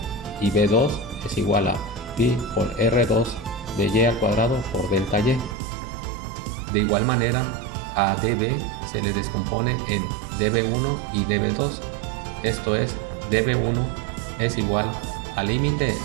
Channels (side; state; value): left; drops out; at 5.6 s